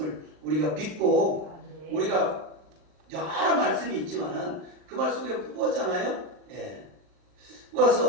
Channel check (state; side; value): late; left; 39 ms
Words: 우리가 믿고 아멘. 우리가 여러 말씀이 있지만은 그 말 속에 뽑았잖아요. 예.